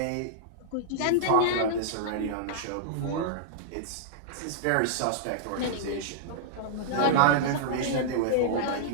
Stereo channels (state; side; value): different; both; correlation -0.02